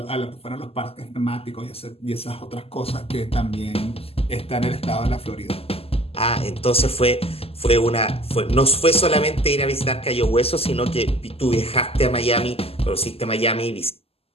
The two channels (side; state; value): right; late; 0.29 ms